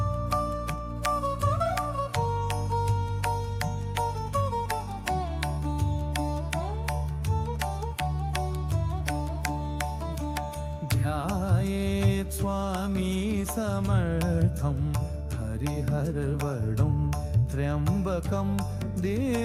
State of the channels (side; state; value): both; identical; correlation 1.00